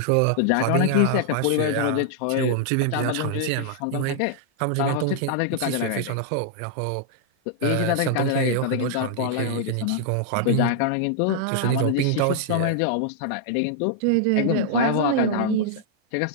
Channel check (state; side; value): different; both; correlation -0.01